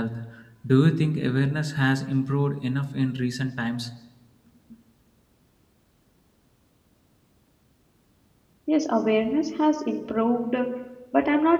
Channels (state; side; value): identical; both; correlation 1.00